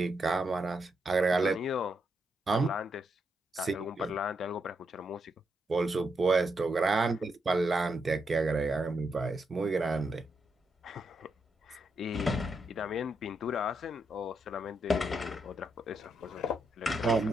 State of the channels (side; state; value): both; normal; correlation 0.81